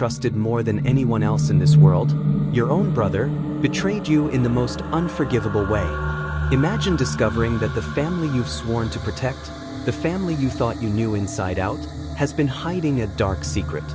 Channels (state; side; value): identical; both; correlation 1.00